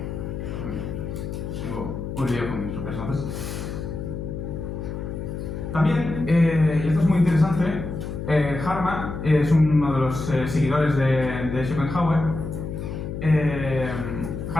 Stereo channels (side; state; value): left; noise; hum, 6 dB below the sound